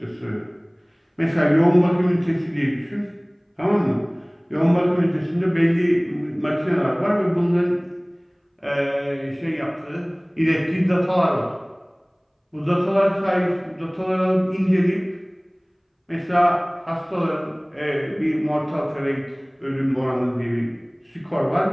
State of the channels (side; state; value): both; identical; correlation 1.00